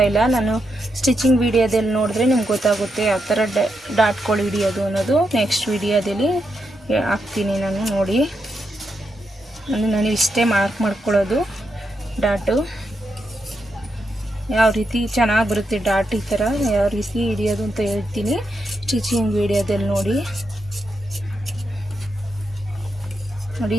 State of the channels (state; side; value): normal; both; correlation 0.83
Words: ಇಲ್ಲ. ನಾನು ಸ್ಟಿಚಿಂಗ್ ವಿಡಿಯೋದಲ್ಲಿ ನೋಡಿದ್ರೆ ನಿಮ್ಗೆ ಗೊತ್ತಾಗುತ್ತೆ ಯಾವ ಥರ ಡಾಟ್ಗಳು ಹಿಡಿಯೋದು ಅನ್ನೋದು. ನೆಕ್ಸ್ಟ್ ವಿಡಿಯೋದಲ್ಲಿ ಹಾಕ್ತೀನಿ ನಾನು. ನೋಡಿ ನಾನು ಇಷ್ಟೇ ಮಾರ್ಕ್ ಮಾಡ್ಕೊಳ್ಳೋದು. ಡಾಟು ಯಾವ ರೀತಿ ಚೆನ್ನಾಗಿ ಬರುತ್ತೆ ಡಾಟ್ ಈ ಥರ ಯಾವ ರೀತಿ ಹಿಡಿಯೋದು ಅಂತ ಹೇಳ್ತೀನಿ ಸ್ಟಿಚಿಂಗ್ ವಿಡಿಯೋದಲ್ಲಿ ನೋಡಿ. ನೋಡಿ